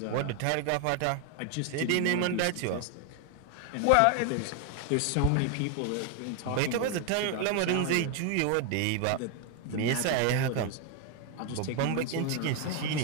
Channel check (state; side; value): different; both; correlation 0.00